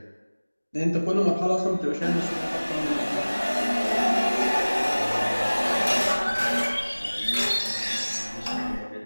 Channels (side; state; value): both; inverted; correlation -1.00